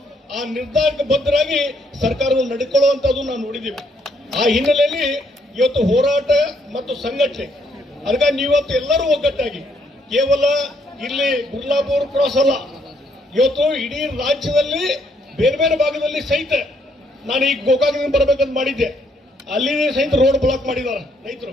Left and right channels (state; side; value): normal; both; correlation 0.71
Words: ಆ ನಿರ್ಧಾರಕ್ಕೆ ಬದ್ಧರಾಗಿ ಸರ್ಕಾರವನ್ನು ನಡ್ಕೊಳ್ಳುವಂತದ್ದು ನಾವು ನೋಡಿದ್ದೀವಿ. ಆ ಹಿನ್ನೆಲೆಯಲ್ಲಿ ಇವತ್ತು ಹೋರಾಟ ಮತ್ತು ಸಂಘಟನೆ, ಅದಕ್ಕಾಗಿ ನೀವತ್ತು ಎಲ್ಲರೂ ಒಗ್ಗಟ್ಟಾಗಿ ಕೇವಲ ಇಲ್ಲಿ ಗುರ್ಲಾಪುರ ಕ್ರಾಸ್ ಅಲ್ಲ, ಇವತ್ತು ಇಡೀ ರಾಜ್ಯದಲ್ಲಿ ಬೇರೆ ಬೇರೆ ಭಾಗದಲ್ಲಿ ಸಹಿತ ನಾನು ಈಗ ಗೋಕಾಕದಿಂದ ಬರಬೇಕಂತ ಮಾಡಿದ್ದೆ. ಅಲ್ಲಿ ಸಹಿತ ರೋಡ್ ಬ್ಲಾಕ್ ಮಾಡಿದಾರೆ ರೈತರು.